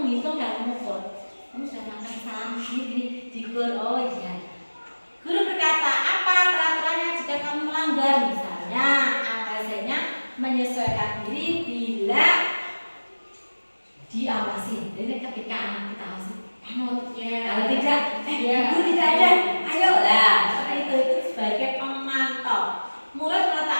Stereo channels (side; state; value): both; inverted; correlation -1.00